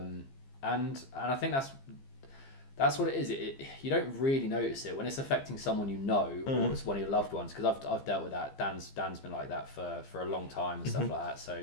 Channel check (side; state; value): right; late; 15 ms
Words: I think that's what it is. You don't really notice it when it's affecting someone you know, or it's one of your loved ones. Because I've dealt with that. Dan's been like that for a long time and stuff like that.